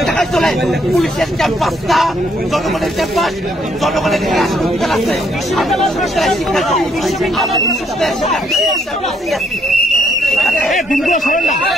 টাকায় চলে। পুলিশের ক্যাম্পাস না, জনগণের ক্যাম্পাস, জনগণের হাসপাতাল আছে।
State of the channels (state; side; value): normal; both; correlation 0.70